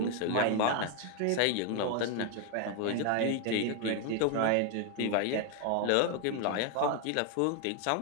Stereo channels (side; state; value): both; different; correlation 0.01